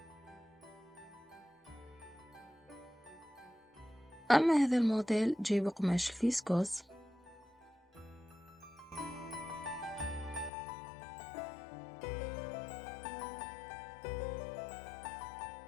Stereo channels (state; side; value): drops out; right; at 10.5 s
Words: أما هذا الموديل جاي بقماش الفيسكوس.